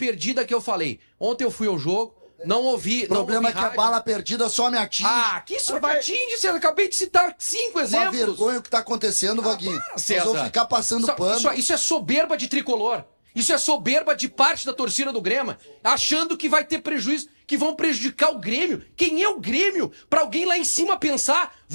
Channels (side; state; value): both; inverted; correlation -1.00